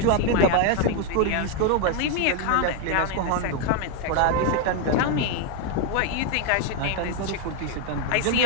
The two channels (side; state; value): both; different; correlation 0.01